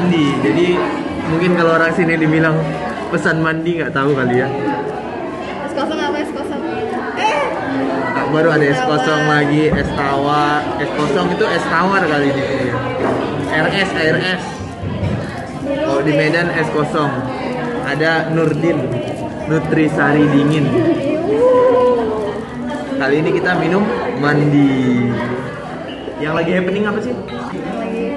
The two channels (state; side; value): identical; both; correlation 1.00